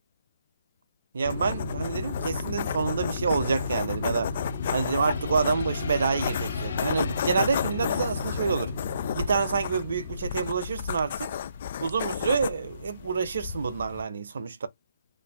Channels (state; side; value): inverted; both; correlation -0.74